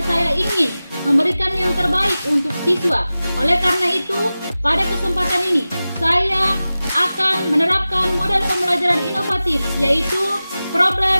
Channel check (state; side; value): inverted; both; correlation -0.96